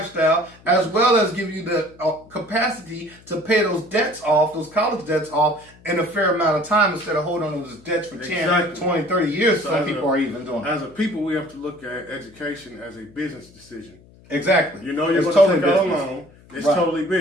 as well as give you the capacity to pay those debts off, those college debts off, in a fair amount of time instead of holding on to those debts for 10, 20, 30 years. So some people are even doing. As a people, we have to look at education as a business decision. Exactly. You know, you're going to take out a loan. It's totally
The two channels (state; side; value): noise; left; hum, 26 dB below the sound